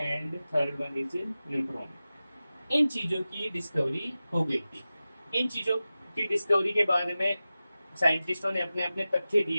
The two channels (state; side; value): inverted; both; correlation -0.95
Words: third one is neutron. इन चीजों की डिस्कवरी हो गई थी। इन चीजों की डिस्कवरी के बारे में साइंटिस्टों ने अपने अपने तथ्य